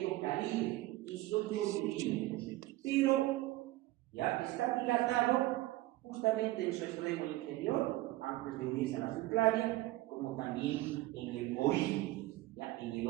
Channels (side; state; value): left; quieter; 17.8 dB